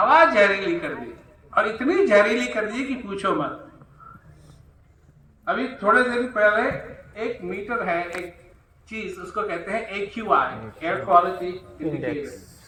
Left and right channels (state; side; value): identical; both; correlation 1.00